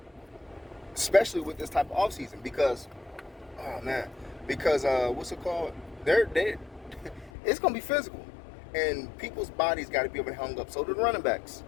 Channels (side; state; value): right; drops out; at 7.3 s